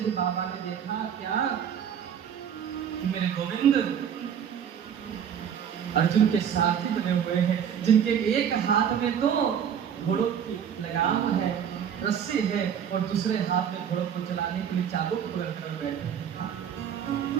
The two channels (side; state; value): left; quieter; 8.5 dB